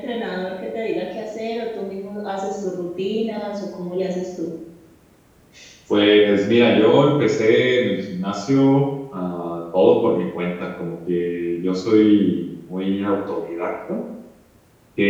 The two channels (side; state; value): both; identical; correlation 1.00